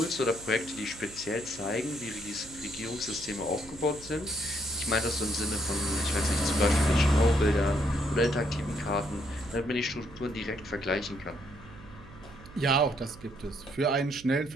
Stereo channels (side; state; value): right; noise; hum, 19 dB below the sound